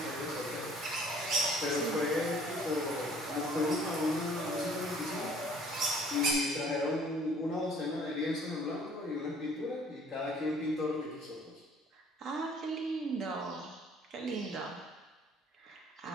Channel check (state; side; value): normal; both; correlation 0.56